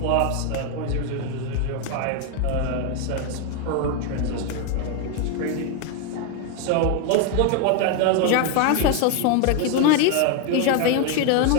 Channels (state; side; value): different; both; correlation 0.01